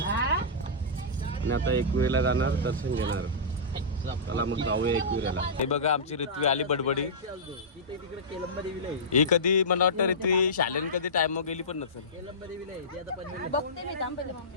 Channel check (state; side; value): normal; both; correlation -0.17